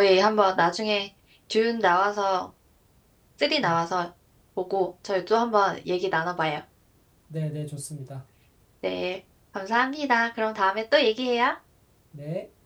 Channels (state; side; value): identical; both; correlation 1.00